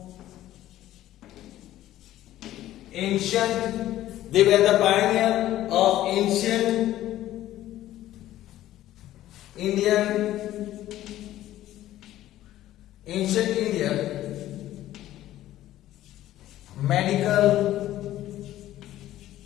ancient, they were the pioneer of ancient India medical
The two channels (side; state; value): right; quieter; 13.9 dB